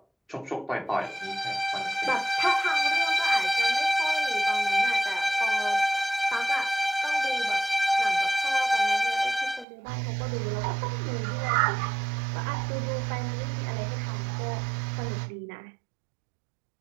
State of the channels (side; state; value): left; drops out; at 9.7 s